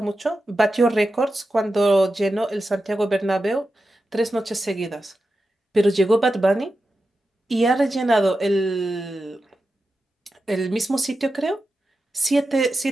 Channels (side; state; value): both; normal; correlation 0.91